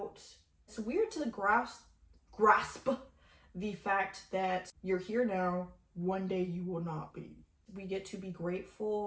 It's weird to grasp the fact that you're here now, one day you will not be. We get to be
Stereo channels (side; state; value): both; identical; correlation 1.00